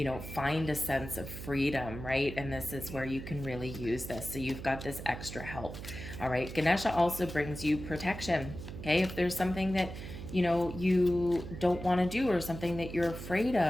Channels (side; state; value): right; noise; hum, 10 dB below the sound